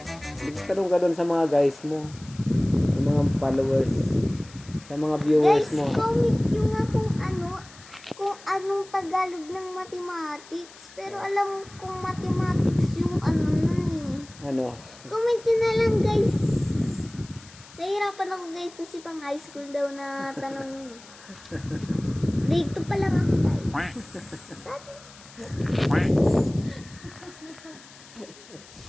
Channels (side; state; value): left; noise; hiss, 21 dB below the sound